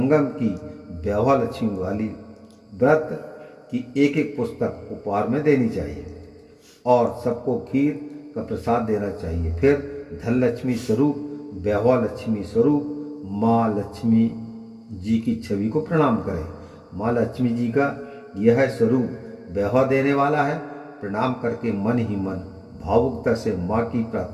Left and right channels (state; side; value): identical; both; correlation 1.00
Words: की वैभव लक्ष्मी वाली व्रत की एक पुस्तक उपहार में देनी चाहिए और सबको खीर का प्रसाद देना चाहिए। फिर धन लक्ष्मी स्वरूप वैभव लक्ष्मी स्वरूप माँ लक्ष्मी जी की छवि को प्रणाम करें। माँ लक्ष्मी जी का यह स्वरूप वैभव देने वाला है। प्रणाम करके मन ही मन भावुकता से माँ की